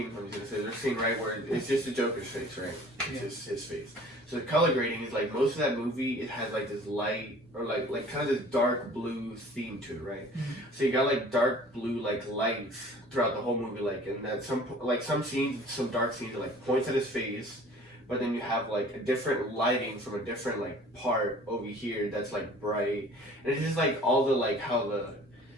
There's a scene right where it's just the Joker's face, right? It's just his face. So the color grading is like most of that movie. It has like this light or like kind of this dark blue theme to it, right? Mm-hmm. So you got like dark blue like lights throughout the whole movie, like and that some scenes, some dark scenes are like points at his face, but then you have like a different lighting from a different like part over here that's like bright, and it's just like all the like how the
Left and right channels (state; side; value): normal; both; correlation 0.48